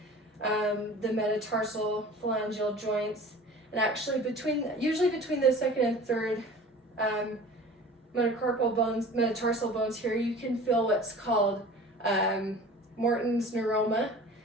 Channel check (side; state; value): both; normal; correlation 0.42